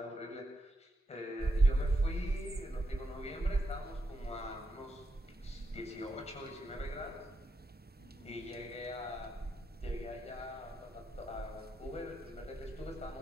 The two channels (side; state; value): both; normal; correlation 0.83